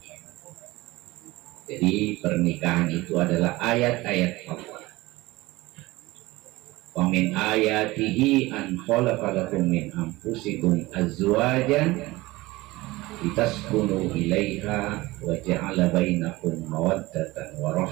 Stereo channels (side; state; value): left; quieter; 20.1 dB